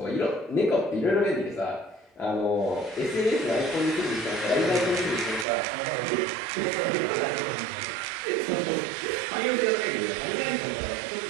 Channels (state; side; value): drops out; left; at 5.5 s